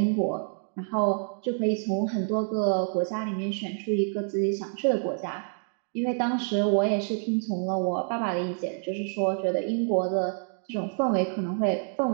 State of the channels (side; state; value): left; silent; 59 dB below the other